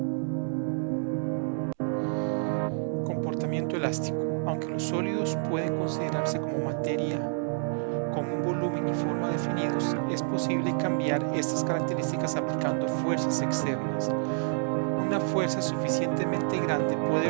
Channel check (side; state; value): left; silent; digital silence